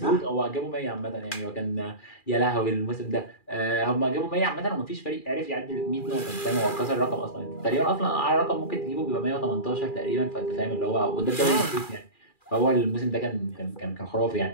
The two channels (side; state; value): right; late; 2.4 ms